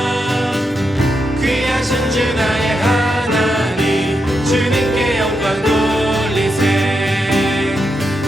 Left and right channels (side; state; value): both; normal; correlation 0.84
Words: 귀하신 주 나의 하나님 주님께 영광 돌리세.